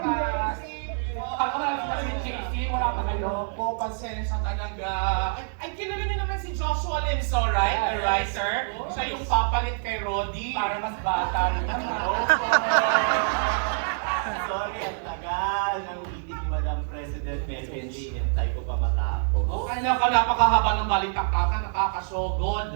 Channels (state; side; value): silent; left; digital silence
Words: Ako na lang si JC, wala pa kayo. Po, pasensya talaga. Ay, kilala niyo naman si Joshua Limso, right? The writer. Siya yung papalit kay Roddy. Para mas bata rin naman. Sorry, ang tagal ng meeting ni Madam President Melvin Lee. Hintay ko pa matapos. Ay, napakahaba ng balitaktakan,